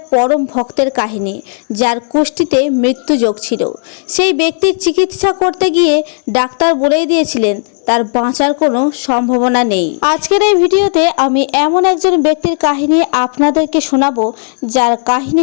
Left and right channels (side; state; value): right; silent; digital silence